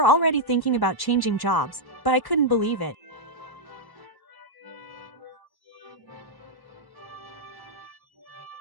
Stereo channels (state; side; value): late; right; 1.1 ms